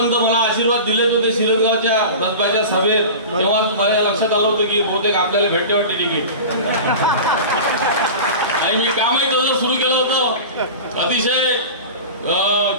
तर मला आशीर्वाद दिलेच होते शिरसगावच्या रसबाच्या सभेत. तेव्हा माझ्या लक्षात आलं होतं की बहुतेक आपल्याला भेटते वाटते तिकीट. आणि मी कामही तसं सुरू केलं होतं. अतिशय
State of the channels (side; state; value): both; inverted; correlation -0.32